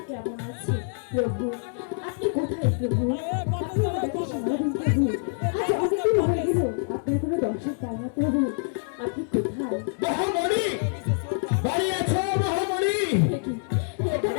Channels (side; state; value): right; silent; 61 dB below the other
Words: কেমন আছে। প্রভু, আপনি কোথায় প্রভু? আপনি আমাদেরকে সারা দিন প্রভু, আজ অনেকদিন হয়ে গেল আপনার কোনো দর্শন পাই না প্রভু, আপনি কোথায়? মহামণি, বাড়ি আছো মহামণি? এটা